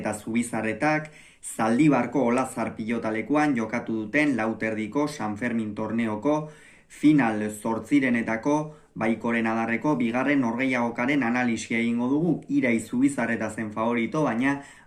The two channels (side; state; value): both; identical; correlation 1.00